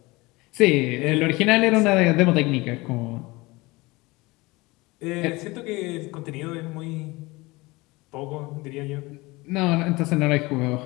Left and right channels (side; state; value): right; quieter; 22.5 dB